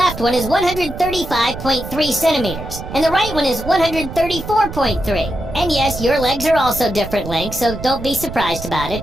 one is 135.3 centimeters, and the right one is 134.3. And yes, your legs are also different lengths, so don't be surprised about it.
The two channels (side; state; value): right; noise; rumble, 10 dB below the sound